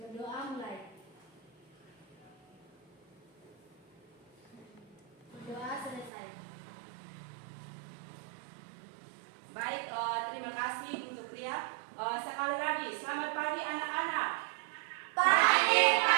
mulai. Berdoa selesai. Baik, terima kasih untuk Ria. Sekali lagi, selamat pagi anak-anak. Pagi,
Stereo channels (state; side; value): drops out; left; at 6.1 s